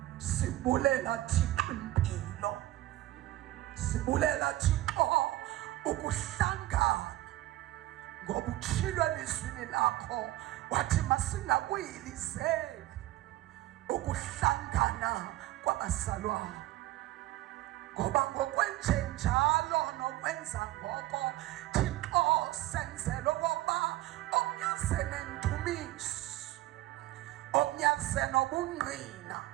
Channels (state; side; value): quieter; left; 16.1 dB